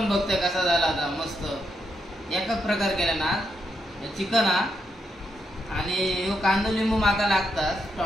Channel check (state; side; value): normal; both; correlation 0.81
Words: बघतोय कसा झाला आता. मस्त एकच प्रकार केला ना चिकन हा. आणि कांदो लिंबू माका लागतात.